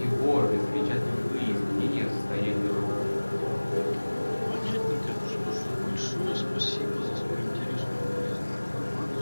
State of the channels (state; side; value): inverted; both; correlation -1.00